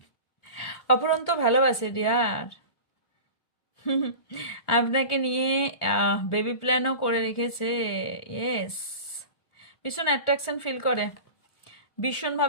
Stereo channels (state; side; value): late; right; 1.4 ms